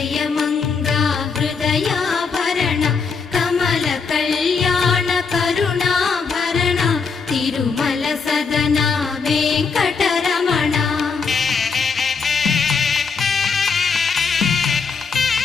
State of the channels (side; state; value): right; quieter; 5.3 dB